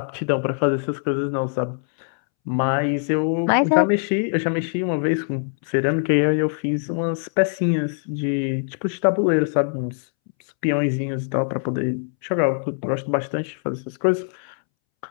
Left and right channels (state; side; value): silent; right; 64 dB below the other